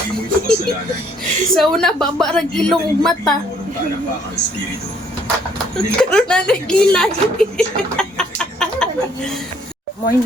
mo ito kasalanan. Sa una, babarag ilong ug mata. Walang palakpakang espiritu. Karoon na nagkilay.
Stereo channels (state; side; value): normal; both; correlation 0.64